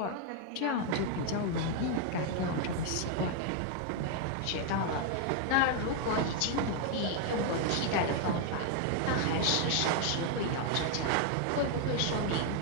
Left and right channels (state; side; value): different; both; correlation 0.00